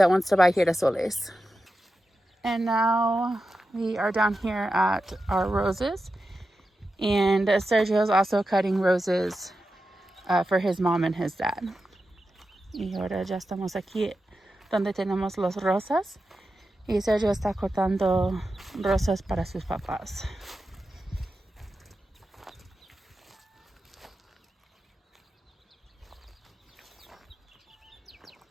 wants to buy girasoles. And now we are down here at our roses, and Sergio is also cutting roses for his mom and his dad. Y ahora ya estamos aquí donde tenemos las rosas, y Sergio está cortando rosas para sus papás.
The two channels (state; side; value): normal; both; correlation 0.91